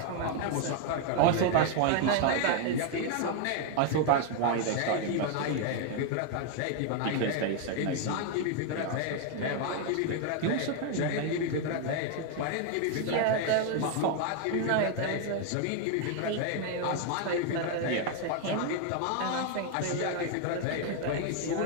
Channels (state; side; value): different; both; correlation 0.00